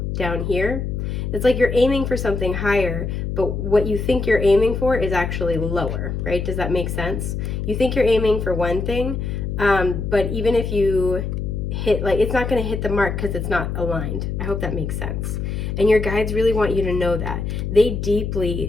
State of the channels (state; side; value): noise; left; hum, 3 dB below the sound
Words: down here? It's like you're aiming for something higher, but what you think you're aiming for is actually lower, right? Does that make sense? You think you're aiming for one thing, but even if you hit, like, it's not going to hit the mark because it's not aligned. I hope that makes sense. And your guides really want you to know that. They